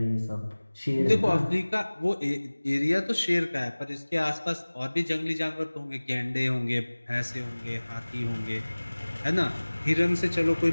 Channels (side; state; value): both; inverted; correlation -1.00